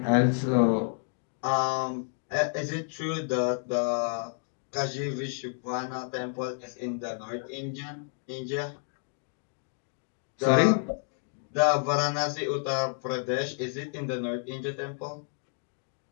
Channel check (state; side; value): silent; right; 58 dB below the other